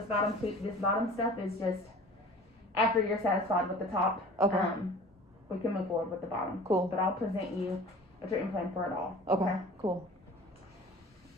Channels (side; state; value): both; normal; correlation 0.43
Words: bottom stuff is just after you're satisfied with the top. We can move forward with the bottom. Cool. But I'll present you a treatment plan for it all. Okay. Cool.